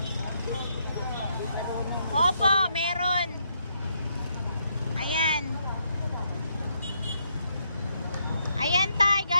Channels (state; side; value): inverted; both; correlation -0.75